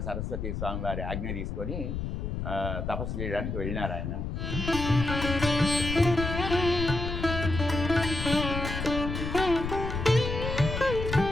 సరస్వతి స్వామి వారి ఆజ్ఞ తీసుకొని తపస్సు చేయడానికి వెళ్ళినారు ఆయన.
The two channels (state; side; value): noise; left; rumble, 4 dB below the sound